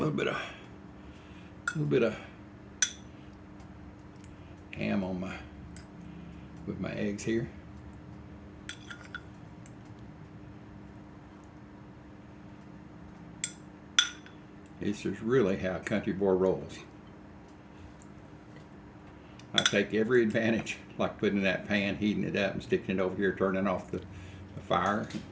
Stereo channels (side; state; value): both; identical; correlation 1.00